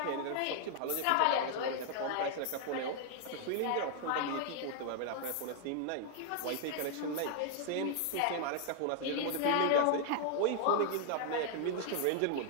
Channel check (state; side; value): different; both; correlation 0.00